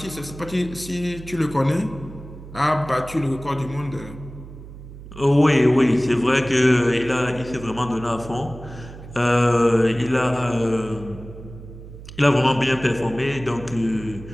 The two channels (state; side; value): noise; right; hum, 15 dB below the sound